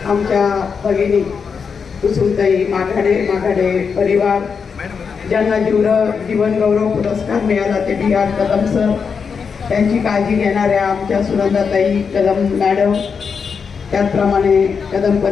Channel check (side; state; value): right; quieter; 5.9 dB